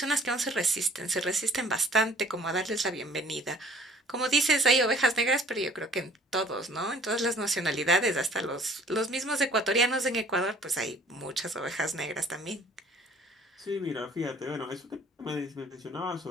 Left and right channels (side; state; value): both; normal; correlation 0.53